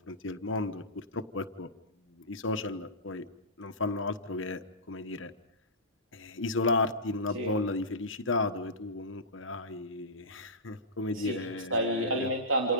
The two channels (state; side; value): normal; both; correlation -0.18